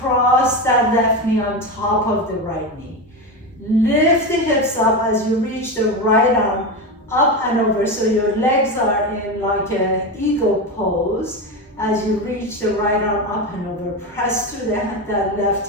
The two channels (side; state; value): both; normal; correlation 0.17